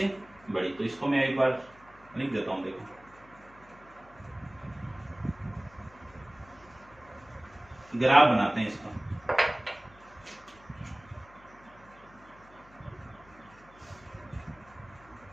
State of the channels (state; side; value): noise; left; hum, 25 dB below the sound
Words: बड़ी, तो इसको मैं एक बार लिख देता हूं। देखो ग्राफ बनाते हैं इसका।